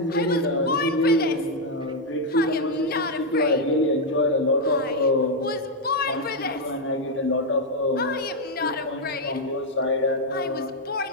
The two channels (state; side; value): normal; both; correlation 0.00